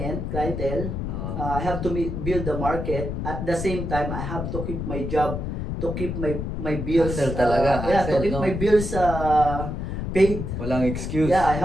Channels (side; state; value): left; noise; rumble, 4 dB below the sound